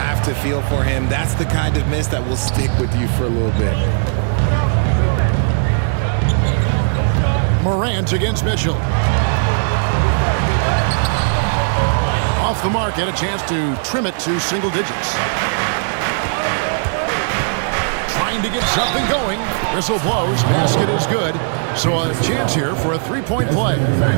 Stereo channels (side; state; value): left; silent; 59 dB below the other